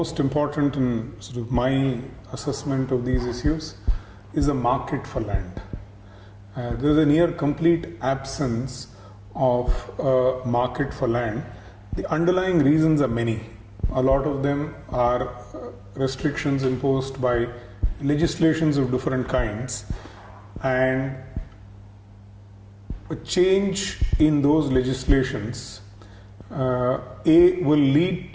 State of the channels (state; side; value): identical; both; correlation 1.00